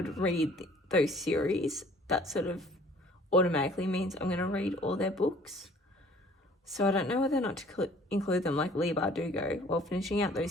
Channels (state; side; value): normal; both; correlation 0.54